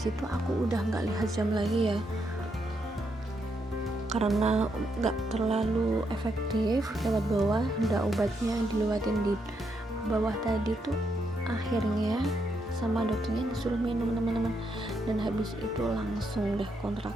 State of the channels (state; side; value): normal; both; correlation 0.79